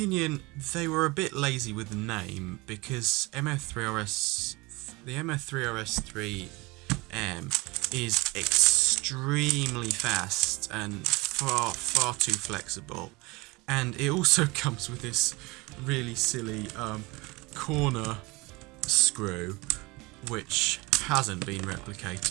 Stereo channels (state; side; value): quieter; left; 23.9 dB